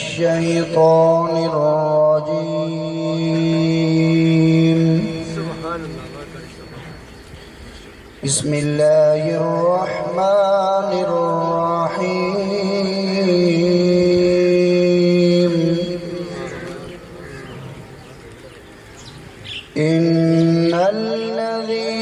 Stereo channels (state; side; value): identical; both; correlation 1.00